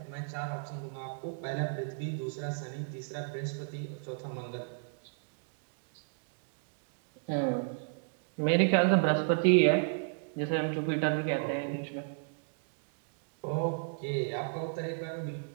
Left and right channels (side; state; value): left; silent; digital silence